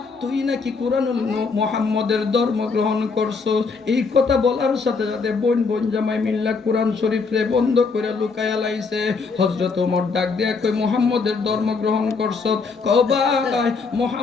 তুই নাকি কুরআনুল মুহাম্মদের ধর্ম গ্রহণ করছো? এই কথা বলার সাথে সাথে বোন জামাই মিল্লা কুরআন শরীফে বন্ধ করে লুকায়া লাইছে। হযরত ওমর ডাক দিয়া কই মুহাম্মদের ধর্ম গ্রহণ করছো? কও ভাই,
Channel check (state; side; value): quieter; right; 4.7 dB